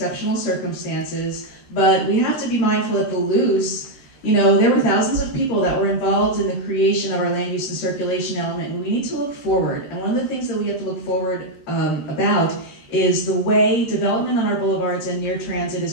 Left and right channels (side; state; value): right; late; 13 ms